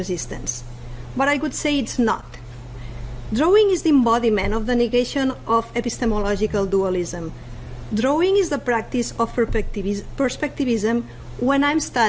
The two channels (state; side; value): identical; both; correlation 1.00